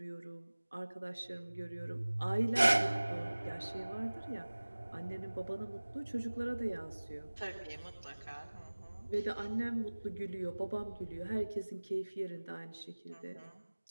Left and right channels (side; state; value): both; inverted; correlation -1.00